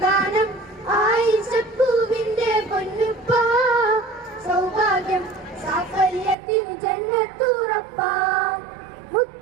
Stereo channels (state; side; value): drops out; left; at 6.4 s